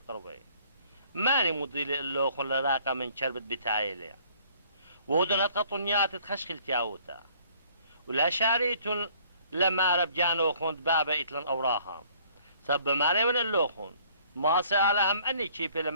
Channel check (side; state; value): both; inverted; correlation -0.58